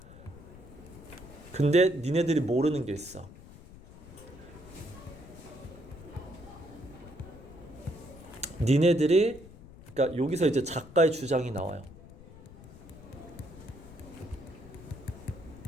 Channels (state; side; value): noise; left; rumble, 18 dB below the sound